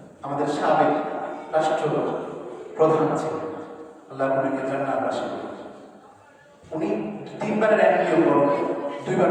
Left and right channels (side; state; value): both; identical; correlation 1.00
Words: আমাদের সাবেক রাষ্ট্র প্রধান ছিলেন, আল্লাহ উনাকে জান্নাতবাসী করুন। উনি 3 বারের এমপিও করেন, 2 বার